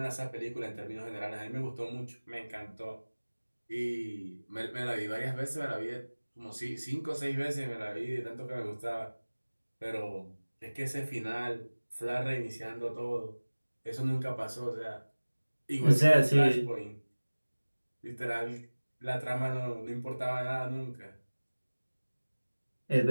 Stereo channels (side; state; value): both; inverted; correlation -1.00